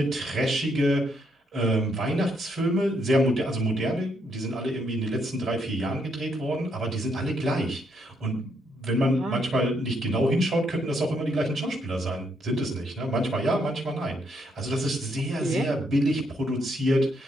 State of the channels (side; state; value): both; normal; correlation 0.75